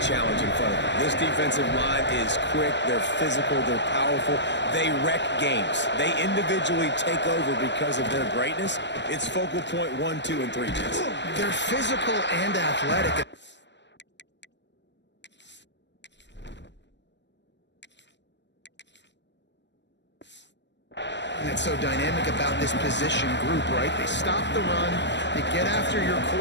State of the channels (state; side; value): late; right; 0.52 ms